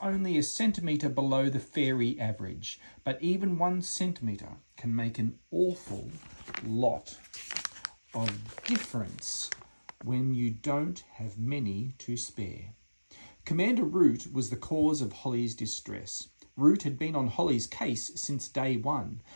a centimetre below the fairy average, but even 1 centimetre can make an awful lot of difference when you don't have many to spare. Commander Root was the cause of Holly's distress. Root had been on Holly's case since day one.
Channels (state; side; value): inverted; both; correlation -1.00